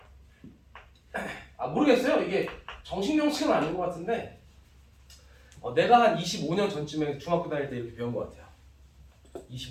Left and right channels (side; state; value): both; identical; correlation 1.00